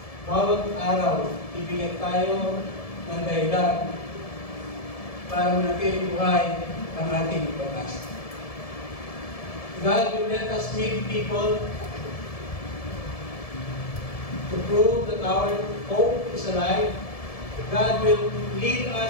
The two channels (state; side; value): late; right; 1.7 ms